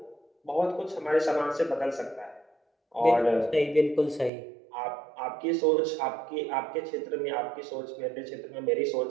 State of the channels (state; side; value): drops out; left; at 4.3 s